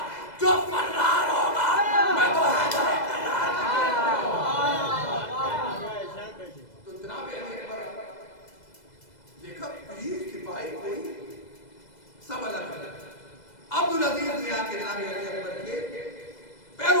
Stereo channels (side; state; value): right; late; 2.0 ms